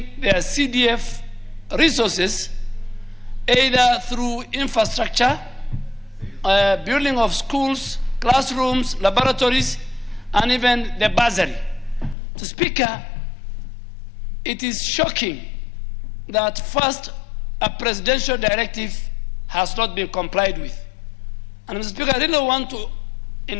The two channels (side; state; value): right; drops out; at 12.2 s